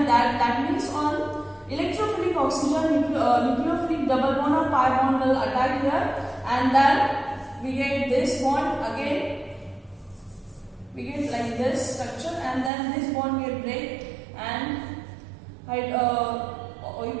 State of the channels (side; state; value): left; drops out; at 12.7 s